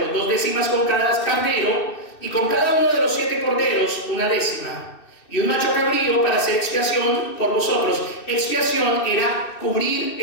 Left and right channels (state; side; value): late; right; 2.6 ms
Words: 2/10 con cada carnero, y con cada uno de los 7 corderos 1/10, y un macho cabrío para hacer expiación por vosotros. Expiación era cubrir